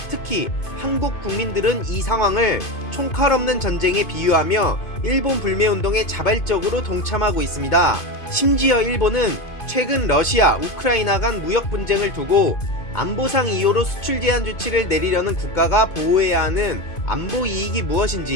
특히 한국 국민들은 이 상황을 총칼 없는 전쟁에 비유하며 일본 불매운동에 자발적으로 동참하고 있습니다. 심지어 일본은 최근 러시아, 우크라이나 간 무역 분쟁을 두고 안보상 이유로 수출 제한 조치를 내리려는 국가가 보호해야 하는 안보 이익이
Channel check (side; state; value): right; late; 2.2 ms